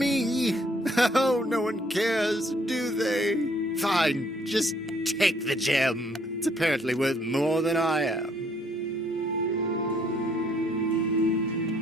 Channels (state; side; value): normal; both; correlation 0.65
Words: Oh, no one cares, do they? Fine, just take the gem. It's apparently worth more than I am.